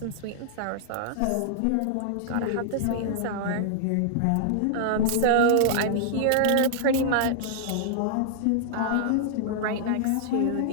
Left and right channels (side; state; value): both; different; correlation -0.01